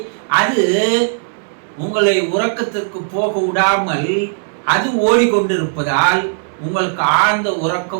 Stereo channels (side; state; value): left; silent; digital silence